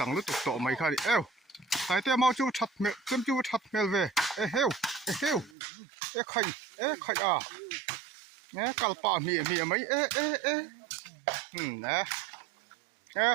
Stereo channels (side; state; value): left; drops out; at 5.6 s